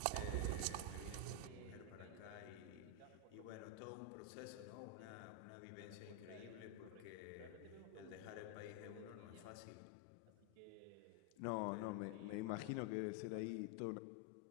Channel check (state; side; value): different; both; correlation 0.01